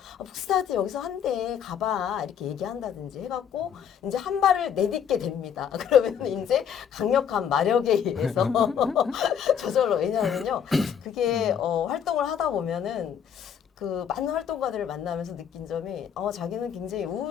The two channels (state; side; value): quieter; right; 8.3 dB